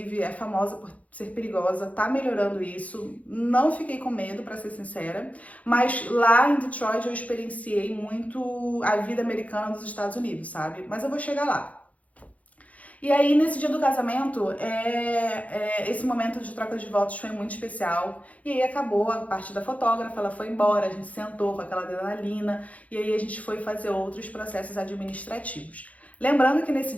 é famosa por ser perigosa, tá melhorando isso, não fiquei com medo, pra ser sincera, mas lá em Detroit eu experienciei muito a vida americana dos Estados Unidos, sabe? Mas eu vou chegar lá. E aí, nesse dia do casamento, esse momento de troca de votos foi muito especial. E aí acabou a parte da fotógrafa, ela foi embora, a gente sentou com aquela adrenalina, e aí a gente foi fazer outros processos administrativos. Lembrando que nesse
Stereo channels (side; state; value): right; late; 0.069 ms